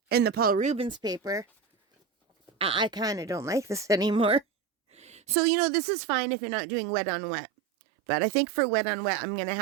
and the Paul Rubens paper, I kind of don't like this anymore. So, this is fine if you're not doing wet on wet. But I think for wet on wet, I'm going to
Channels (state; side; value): drops out; left; at 5.4 s